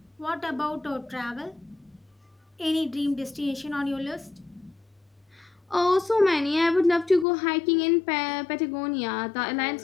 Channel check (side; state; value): right; drops out; at 7.2 s